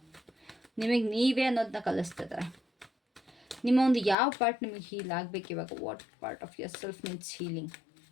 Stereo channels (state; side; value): drops out; right; at 4.2 s